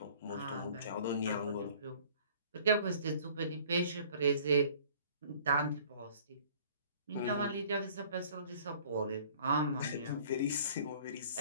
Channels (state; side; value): inverted; both; correlation -0.52